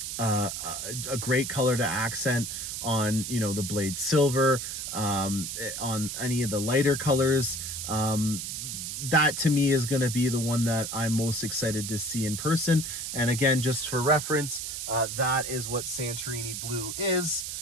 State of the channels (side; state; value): right; noise; hiss, 5 dB below the sound